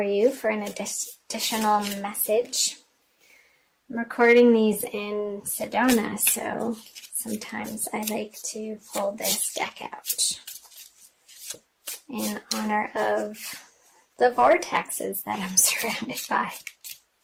you for an additional message. I'm recording these in Sedona, so sometimes I like to pull this deck out in honor of the vortexes that I'm surrounded by.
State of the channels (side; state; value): both; identical; correlation 1.00